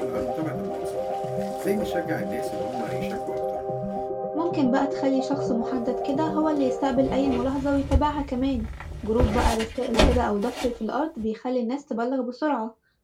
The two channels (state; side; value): identical; both; correlation 1.00